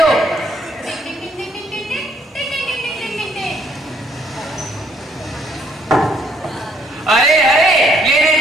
अरे अरे ये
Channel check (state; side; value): normal; both; correlation 0.68